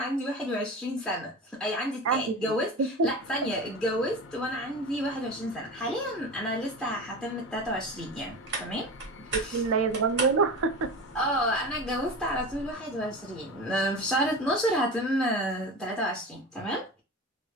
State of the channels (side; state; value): both; normal; correlation 0.29